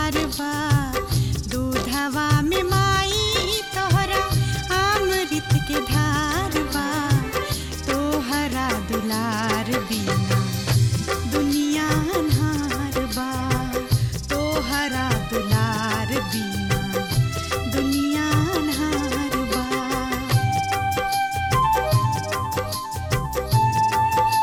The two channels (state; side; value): identical; both; correlation 1.00